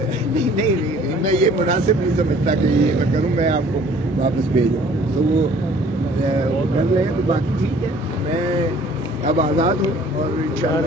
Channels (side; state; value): both; normal; correlation 0.54